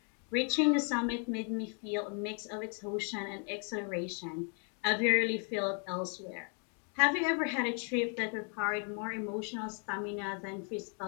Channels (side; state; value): right; quieter; 39.9 dB